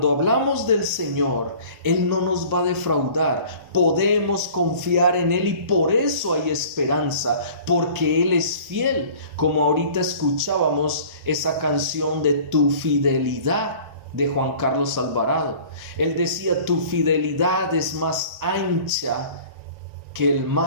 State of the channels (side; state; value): left; late; 1.4 ms